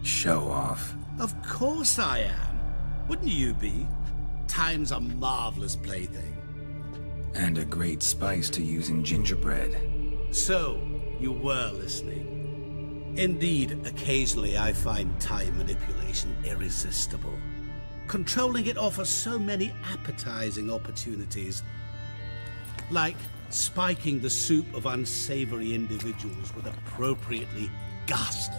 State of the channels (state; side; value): inverted; both; correlation -1.00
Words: Show off. Of course I am. Wouldn't you be? Time's a marvelous plaything. And a great spice to use in gingerbread. So, you were listening. Indeed, occasionally I find time manipulation irresistible. Controlling it offers so many appetizing opportunities. Like spiking the soup of unsavory individuals with appropriately